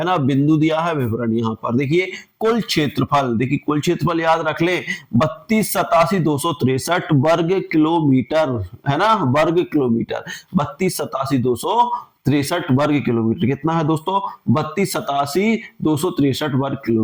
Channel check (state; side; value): identical; both; correlation 1.00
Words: ना, बिंदु दिया है, विवरण यहाँ पर देखिए। कुल क्षेत्रफल, देखिए कुल क्षेत्रफल याद रख ले, 32,87,263 वर्ग किलोमीटर, है ना, वर्ग किलोमीटर, 32,87,263 वर्ग किलोमीटर। कितना है दोस्तों? 32,87,263 वर्ग